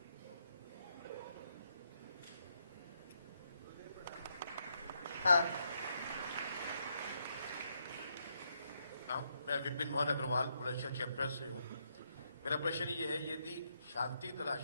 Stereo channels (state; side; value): inverted; both; correlation -0.78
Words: हाँ, मैं विपिन मोहन अग्रवाल बुलंदशहर चैप्टर से हूँ। मेरा प्रश्न ये है, यदि शांति तलाश